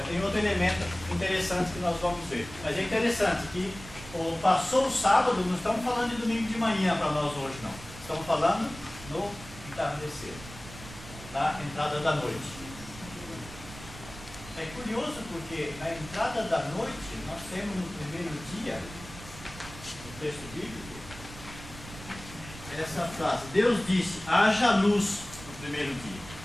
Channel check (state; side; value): noise; right; rumble, 15 dB below the sound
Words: tem outro elemento interessante que nós vamos ver. Mas é interessante que passou o sábado, não estamos falando de domingo de manhã para nós hoje, não. Estamos falando no entardecer. Da entrada da noite. É curioso porque na entrada da noite nós temos no primeiro dia, no texto bíblico, essa frase: Deus disse, haja luz no primeiro dia.